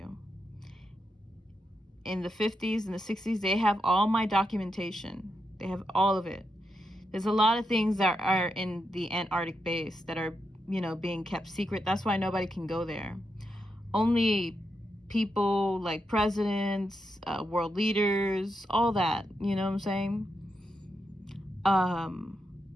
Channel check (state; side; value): normal; both; correlation 0.84